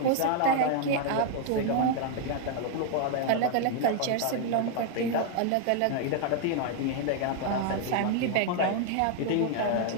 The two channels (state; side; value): different; both; correlation 0.00